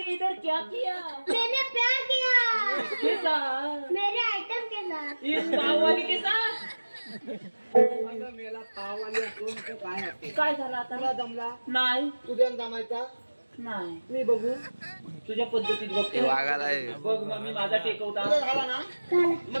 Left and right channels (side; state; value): both; inverted; correlation -1.00